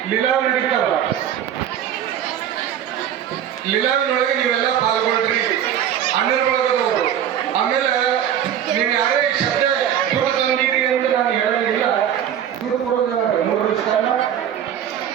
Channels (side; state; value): left; quieter; 9.8 dB